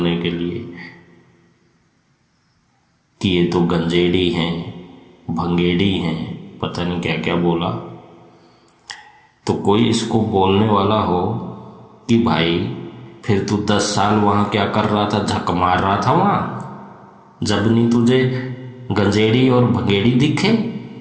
के लिए कि ये तो गंजेड़ी हैं, भंगेड़ी हैं, पता नहीं क्या क्या बोला। तो कोई इसको बोलने वाला हो कि भाई फिर तू 10 साल वहां क्या कर रहा था, झक मार रहा था वहां, जब नहीं तुझे गंजेड़ी और भंगेड़ी दिखे,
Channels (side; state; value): both; identical; correlation 1.00